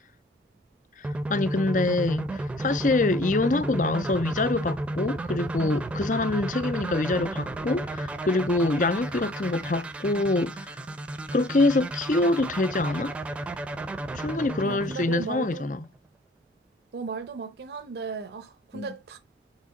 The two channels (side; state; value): both; normal; correlation 0.55